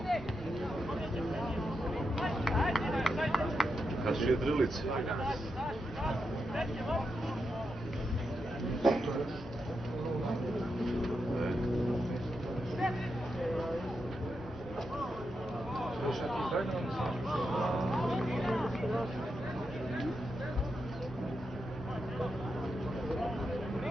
Kad su jedrilice?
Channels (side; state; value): both; normal; correlation 0.86